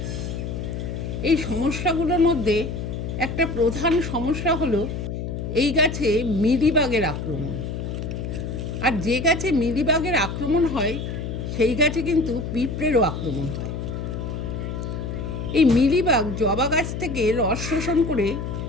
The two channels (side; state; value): left; noise; hum, 5 dB below the sound